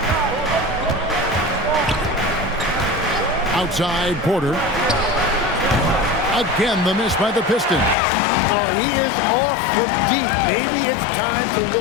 Outside, Porter. Again, the miss by the Pistons. Oh, he is off from deep. Maybe it's time to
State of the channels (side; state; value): right; drops out; at 8.0 s